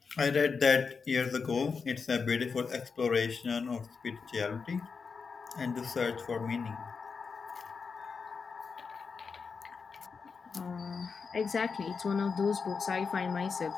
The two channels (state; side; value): quieter; right; 5.3 dB